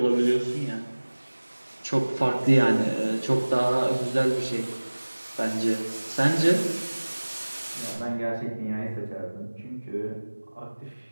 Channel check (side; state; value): both; inverted; correlation -1.00